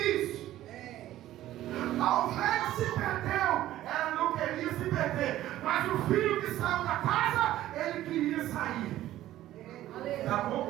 A ovelha se perdeu, ela não queria se perder, mas o filho que saiu da casa, ele queria sair. Tá bom,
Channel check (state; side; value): quieter; left; 14.0 dB